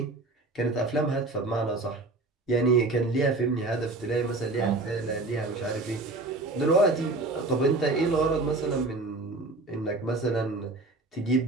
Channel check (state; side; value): quieter; left; 3.1 dB